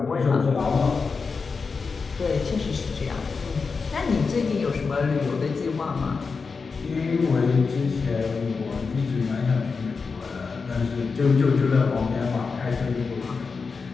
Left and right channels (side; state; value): right; quieter; 4.8 dB